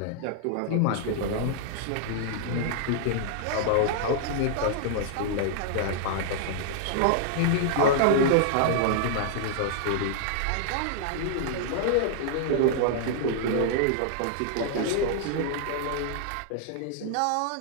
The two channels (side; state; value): both; different; correlation -0.01